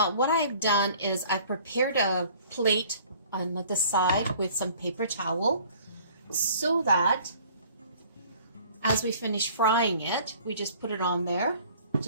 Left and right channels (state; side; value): inverted; both; correlation -0.53